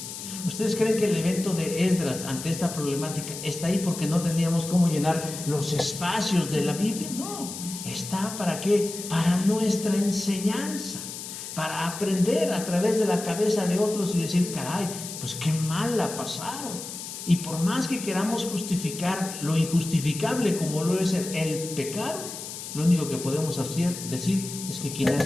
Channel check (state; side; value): noise; left; hiss, 9 dB below the sound